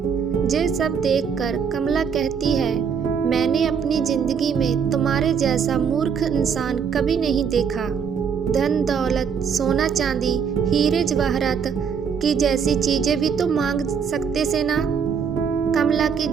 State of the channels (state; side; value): quieter; left; 6.7 dB